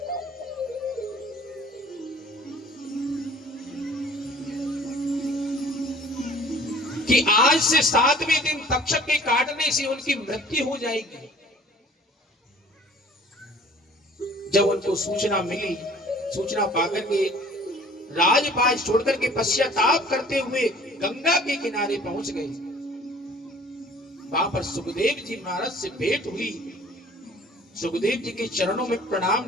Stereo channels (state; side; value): normal; both; correlation 0.50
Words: कि आज से 7वें दिन तक्षक के काटने से उनकी मृत्यु हो जाएगी। जब उनको सूचना मिली, सूचना पाकर के राजपाट छोड़कर के पश्चाताप करते हुए गंगा के किनारे पहुंच गए। वहां पर सुखदेव जी महाराज से भेंट हुई। सुखदेव जी के चरणों में